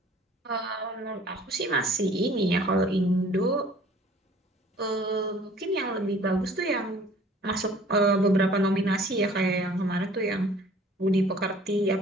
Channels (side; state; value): both; normal; correlation 0.52